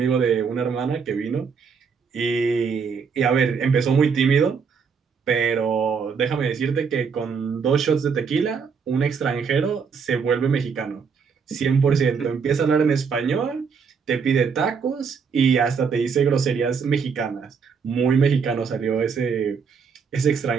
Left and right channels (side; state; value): left; quieter; 5.9 dB